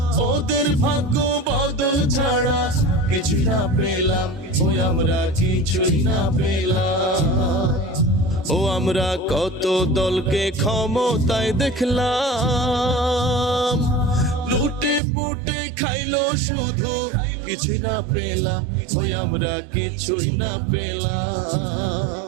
ওদের ভাগ্য বদল ছাড়া কিছু না পেলাম, ওই আমরা কিছুই না পেলাম। ও আমরা কত দলকে ক্ষমতায় দেখলাম, লুটে পুটে খাইলো শুধু, কিছুই না পেলাম, ওই আমরা কিছুই না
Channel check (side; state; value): left; drops out; at 15.0 s